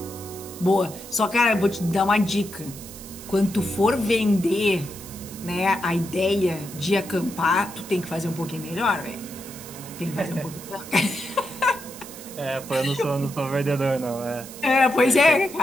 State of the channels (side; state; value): right; noise; hiss, 15 dB below the sound